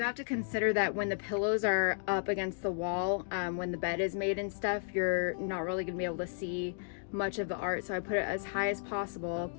have to consider that when the pillows are up against the wall, when the bed is made and stuff, you're not really gonna be able to see much of the art, so I put it as high as possible.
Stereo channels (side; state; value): right; silent; digital silence